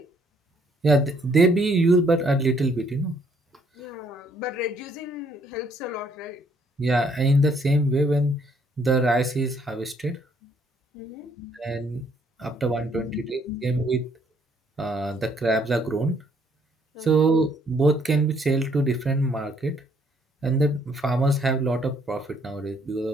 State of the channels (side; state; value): both; normal; correlation 0.67